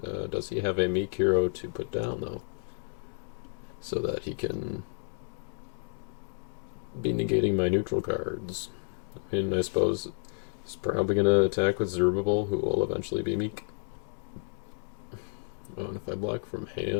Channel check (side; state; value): right; silent; digital silence